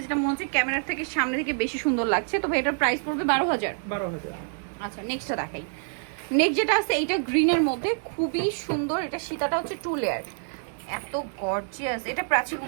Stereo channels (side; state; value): left; silent; 60 dB below the other